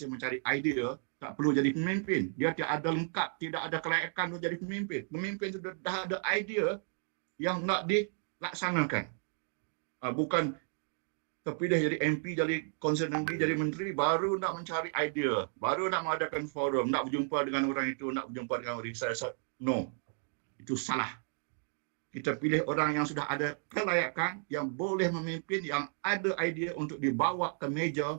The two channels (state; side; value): silent; left; 56 dB below the other